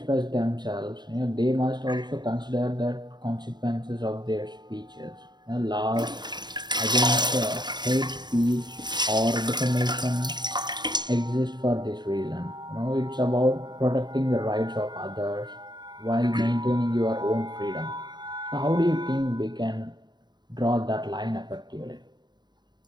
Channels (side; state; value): left; late; 0.21 ms